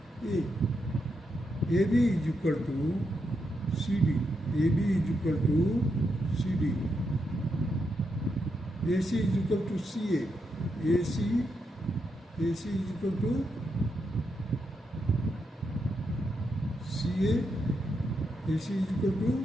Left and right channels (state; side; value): normal; both; correlation 0.83